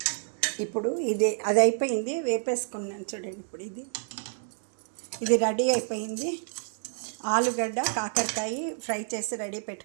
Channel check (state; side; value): silent; left; digital silence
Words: ఇప్పుడు అది అయిపోయింది, వేపేసుకున్నాను చూడండి. ఇప్పుడు ఇది రెడీ అయిపోయింది. ఆలుగడ్డ కాకరకాయ ఫ్రై చేసి రెడీ